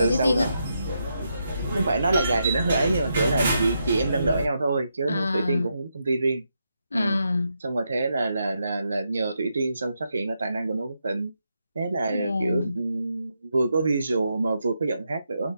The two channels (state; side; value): inverted; both; correlation -0.82